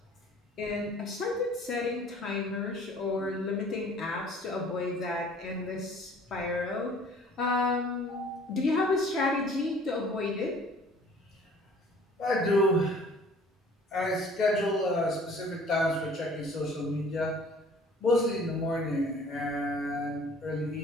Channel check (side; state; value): both; normal; correlation 0.52